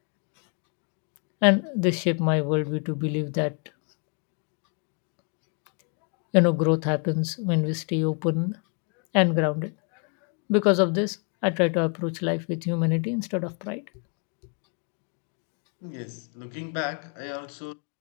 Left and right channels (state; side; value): quieter; right; 38.2 dB